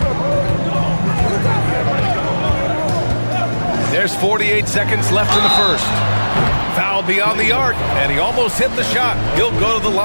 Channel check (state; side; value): inverted; both; correlation -1.00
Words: There's 48 seconds left in the first. Foul beyond the arc, and he almost hit the shot. He'll go to the